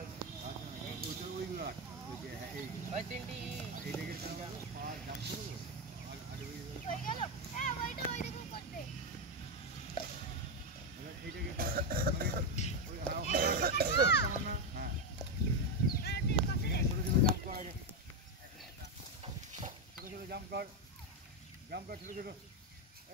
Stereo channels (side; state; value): both; normal; correlation 0.07